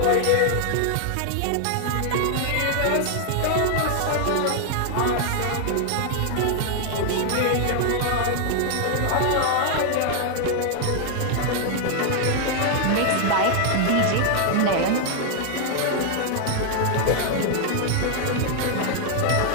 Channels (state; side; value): different; both; correlation 0.00